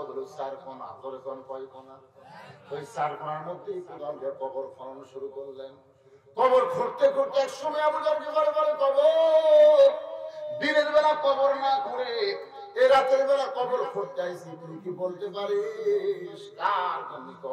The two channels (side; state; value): both; identical; correlation 1.00